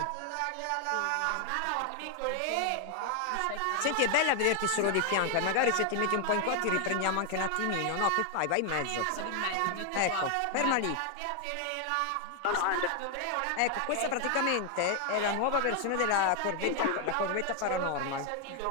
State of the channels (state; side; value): different; both; correlation 0.00